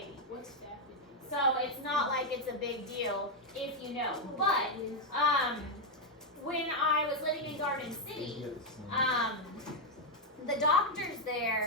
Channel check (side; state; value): both; normal; correlation 0.01